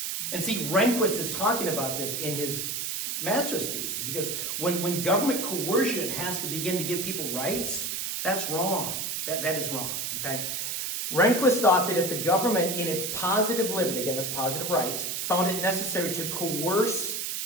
And see, Rehnquist is talking about this in his master's thesis. He goes, when government coercion has to begin to give people rights, that's wrong. That is wrong, okay? Rehnquist thought that if the government, in its positive liberty, again, that's positive rights, found it necessary to coerce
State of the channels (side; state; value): right; noise; hiss, 2 dB below the sound